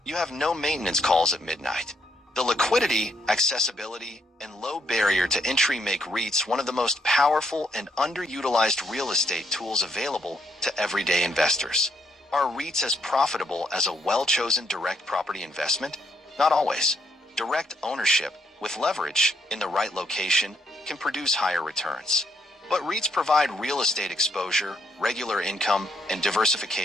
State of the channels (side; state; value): both; normal; correlation 0.74